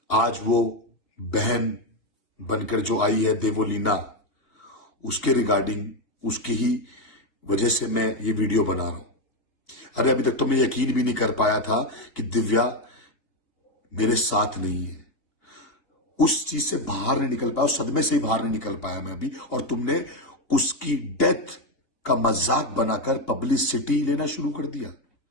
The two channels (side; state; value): right; late; 2.8 ms